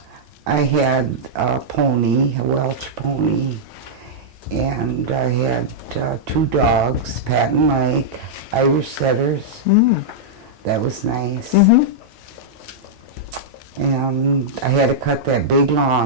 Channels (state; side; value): normal; both; correlation -0.07